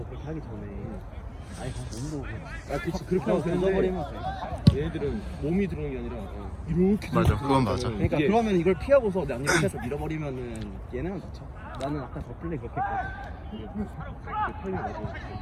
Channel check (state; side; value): identical; both; correlation 1.00